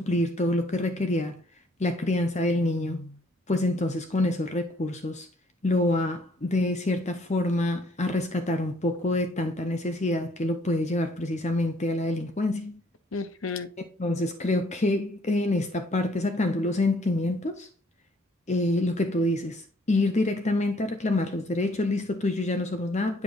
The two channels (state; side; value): normal; both; correlation 0.63